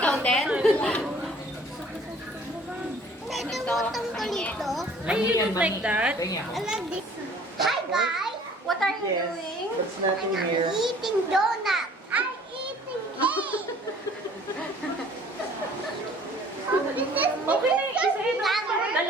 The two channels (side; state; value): both; normal; correlation 0.53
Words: din? Ito, tungkol ito. Ay, you don't like that? Kaya I like this. Hi, guys. What are you doing? There's nothing here. Eating donut. I'm eating cake. This is Okay na, isa-isa.